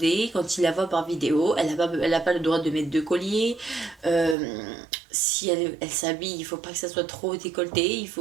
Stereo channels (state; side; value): drops out; left; at 4.4 s